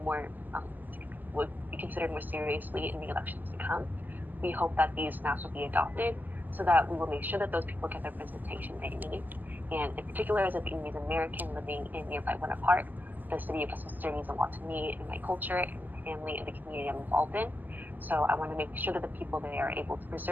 more seriously in the elections to come. We hope that these maps will be adopted so that we will make sure that those people get the representation they need. And in particular, as a Vietnamese American living in nearby Winter Park, the city of Westminster means a lot to me and my culture and my family and the community I'm involved in. So I want to make sure that the people there are able to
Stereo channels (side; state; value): left; late; 0.085 ms